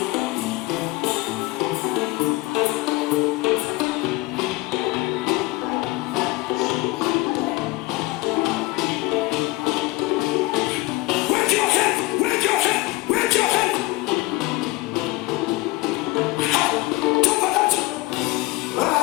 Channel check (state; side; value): quieter; right; 21.2 dB